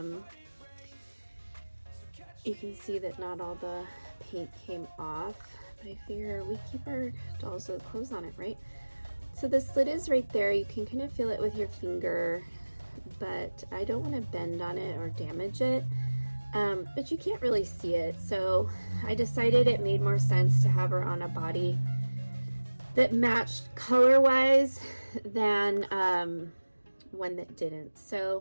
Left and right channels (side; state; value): both; inverted; correlation -1.00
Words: You can see that not all the paint came off, but I figure we keep our dolls with clothes on it, right? So the slit is right there. You can kind of feel it with your finger, but I don't want to bend on it or damage it. But you can't really see it. So I decided it made more sense to have her on a body that matched color-wise than one that didn't.